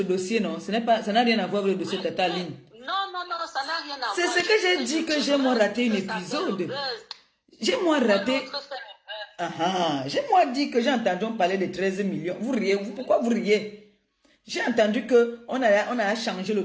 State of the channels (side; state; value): both; identical; correlation 1.00